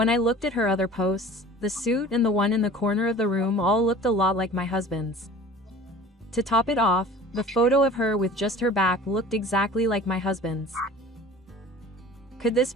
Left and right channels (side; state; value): both; normal; correlation 0.43